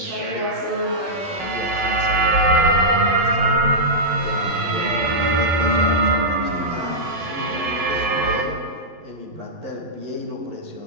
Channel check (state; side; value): late; left; 12 ms